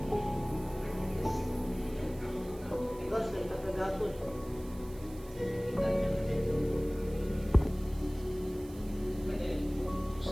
Ikaw, sa ikapagapon.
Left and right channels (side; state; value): right; noise; hiss, 21 dB below the sound